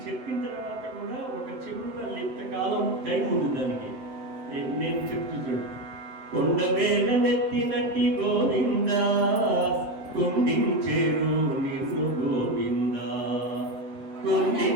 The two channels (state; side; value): late; left; 7.7 ms